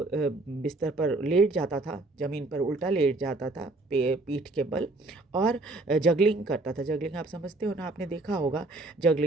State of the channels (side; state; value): left; quieter; 3.0 dB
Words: बिस्तर पर लेट जाता था, ज़मीन पर उल्टा लेट जाता था पीठ के बल, और जगलिंग करता था। जगलिंग आप समझते हो ना, आपने देखा होगा